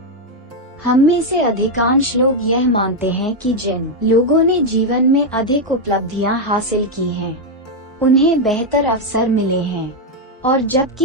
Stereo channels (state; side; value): normal; both; correlation 0.02